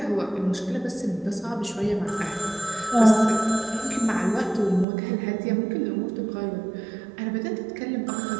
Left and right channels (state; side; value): drops out; left; at 4.9 s